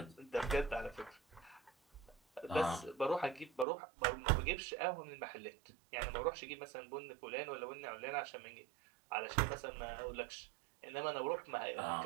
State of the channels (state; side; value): drops out; left; at 3.7 s